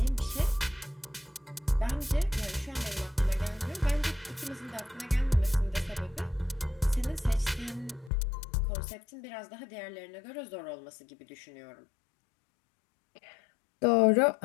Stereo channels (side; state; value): right; drops out; at 8.1 s